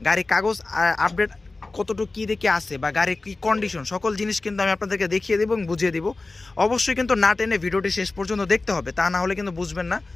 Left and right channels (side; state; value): right; quieter; 3.4 dB